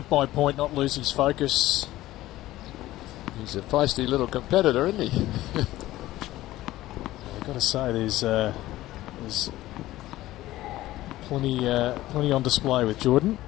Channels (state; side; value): quieter; right; 15.9 dB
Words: by point, not lose his focus. He's a feisty little competitor, isn't he? I've got to say, there's plenty on display with Jordan.